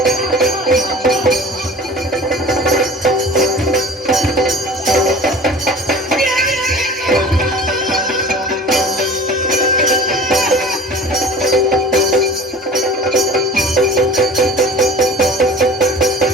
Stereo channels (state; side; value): normal; both; correlation 0.41